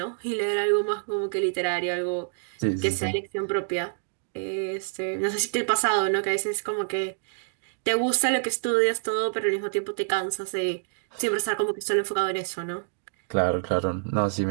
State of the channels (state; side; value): silent; left; digital silence